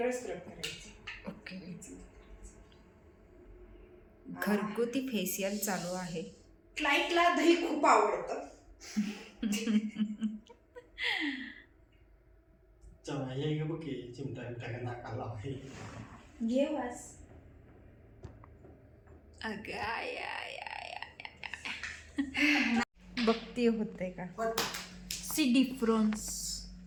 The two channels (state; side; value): identical; both; correlation 1.00